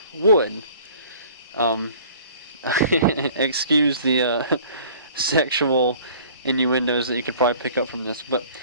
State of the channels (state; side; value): inverted; both; correlation -0.50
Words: wood. Excuse the sexual innuendos that you could probably pick up from this, but